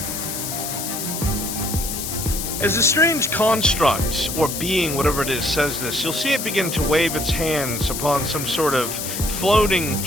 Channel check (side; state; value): left; noise; hiss, 5 dB below the sound